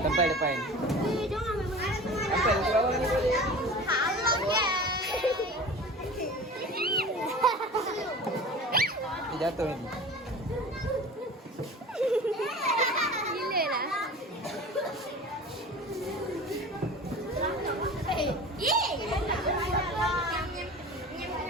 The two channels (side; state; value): both; normal; correlation 0.38